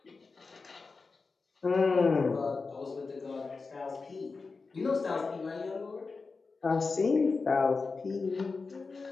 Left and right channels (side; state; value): right; quieter; 4.3 dB